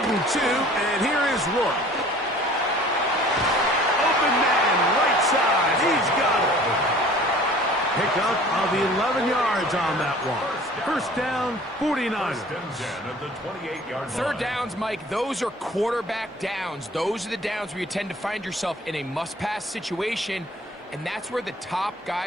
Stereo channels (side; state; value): both; normal; correlation 0.48